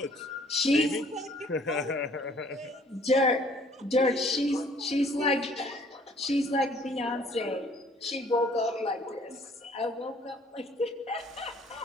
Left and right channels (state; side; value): normal; both; correlation 0.58